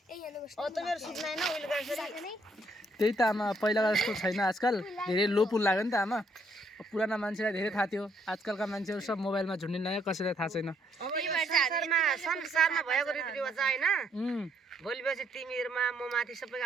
मेरो सुत्न होइन उहिले गरेर त्यही त आमा पहिलाको जस्तो छैन आजकल धेरै लो पुल लाग्यो नि त आमा पुराना मान्छेलाई धेरै थाहा थियो आजकलका मान्छेहरू सब मोबाइलमा झुन्डिन कसैलाई थाहा छैन अब यो संसारमा भएको रीतिरिवाज होइन भोलि पछि तिमीहरूमा म माथि सबैको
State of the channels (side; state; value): both; normal; correlation 0.70